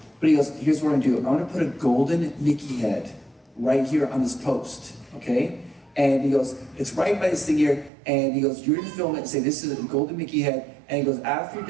But he goes, here's what I'm gonna do. I'm gonna put a golden Mickey head right here on this post, okay? And he goes, it's right by this thing here. And he goes, you're gonna film it and say, this is a golden Mickey head. And he goes, after you're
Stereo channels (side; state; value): left; drops out; at 7.9 s